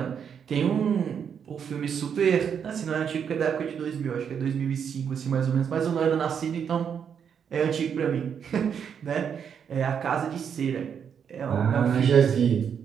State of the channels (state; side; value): quieter; left; 7.6 dB